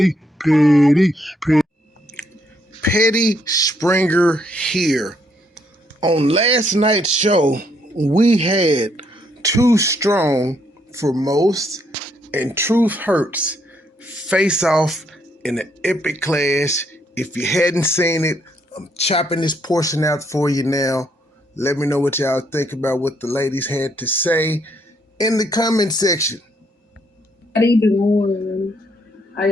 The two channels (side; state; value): both; normal; correlation 0.72